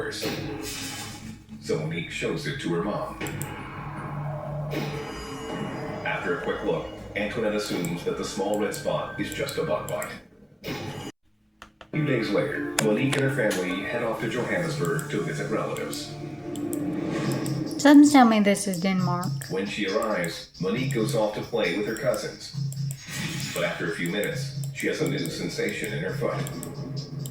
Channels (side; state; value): both; identical; correlation 1.00